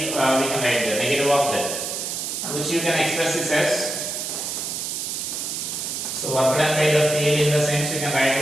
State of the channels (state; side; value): noise; right; hiss, 4 dB below the sound